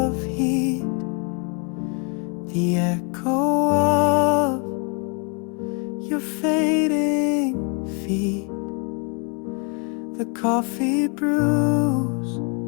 heat, the echo of your fading feet. The coffee brews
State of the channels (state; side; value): quieter; right; 35.9 dB